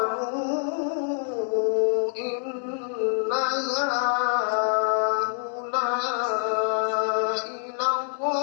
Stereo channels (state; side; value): silent; right; 61 dB below the other